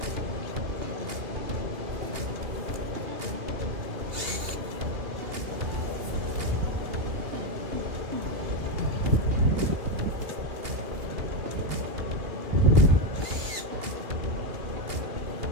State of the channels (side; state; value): left; late; 2.7 ms